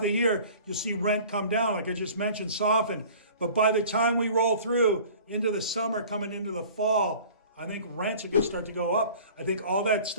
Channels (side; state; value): both; inverted; correlation -0.46